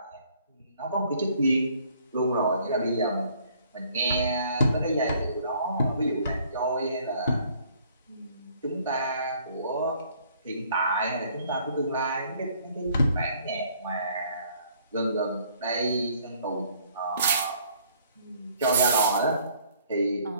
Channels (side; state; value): both; inverted; correlation -0.61